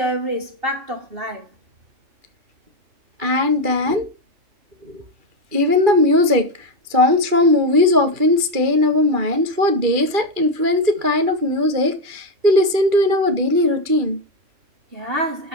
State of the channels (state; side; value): late; left; 2.4 ms